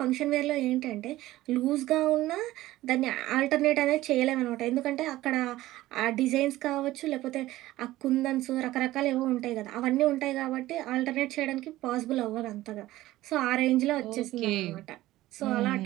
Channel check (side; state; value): left; quieter; 16.3 dB